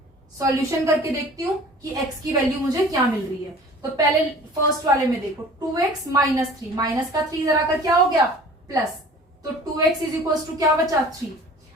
सॉल्यूशन करके देखती हूँ कि x की वैल्यू मुझे क्या मिल रही है। तो पहले फर्स्ट वाले में देखो, 2x -3, माइनस का 3 इधर आकर क्या हो गया? प्लस, तो 2x = क्या बचा? 3।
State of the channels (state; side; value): normal; both; correlation 0.45